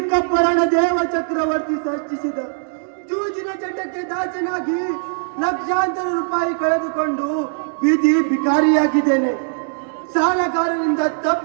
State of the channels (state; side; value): silent; left; digital silence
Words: ದೇವ ಚಕ್ರವರ್ತಿ ಸೃಷ್ಟಿಸಿದ ಜೂಜಿನ ಚಟಕ್ಕೆ ದಾಸನಾಗಿ ಲಕ್ಷಾಂತರ ರೂಪಾಯಿ ಕಳೆದುಕೊಂಡು ಬೀದಿ ಭಿಕಾರಿಯಾಗಿದ್ದೇನೆ. ಸಾಲಗಾರರಿಂದ